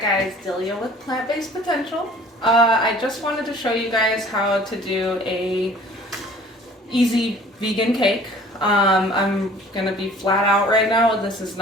Delia with Plant-Based Potential. I just wanted to show you guys how to do a easy vegan cake. I'm gonna be flat out right now. This is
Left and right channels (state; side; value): normal; both; correlation 0.50